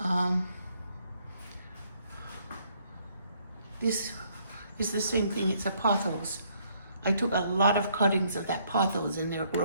This is the same thing, it's a pothos. I took a lot of cuttings of that pothos and they're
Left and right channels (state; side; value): inverted; both; correlation -0.68